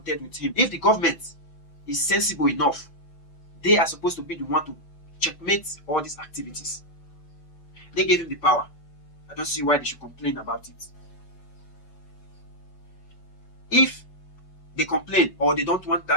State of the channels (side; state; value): right; late; 6.0 ms